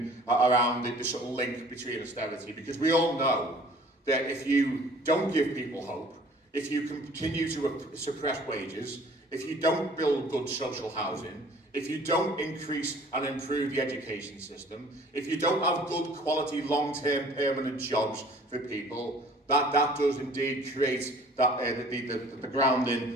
around the sort of link between austerity, because we all know that if you don't give people hope, if you continue to suppress wages, if you don't build good social housing, if you don't increase and improve the education system, if you don't have good quality long-term permanent jobs for people, that does indeed create that, the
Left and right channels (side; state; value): both; normal; correlation 0.51